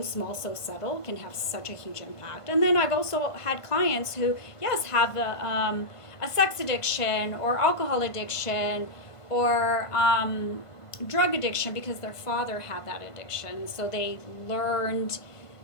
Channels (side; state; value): right; late; 1.5 ms